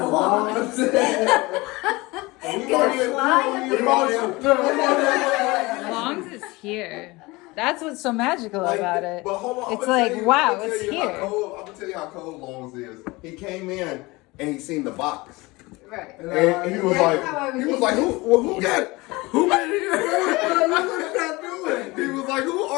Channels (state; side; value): quieter; right; 22.7 dB